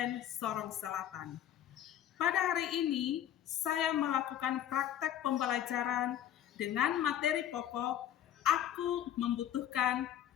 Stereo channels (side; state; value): right; quieter; 11.0 dB